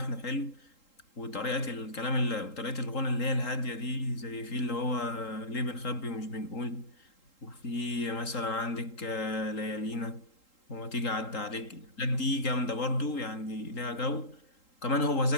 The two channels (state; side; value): late; right; 3.8 ms